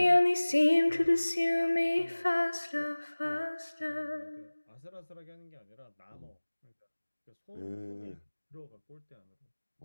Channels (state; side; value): inverted; both; correlation -1.00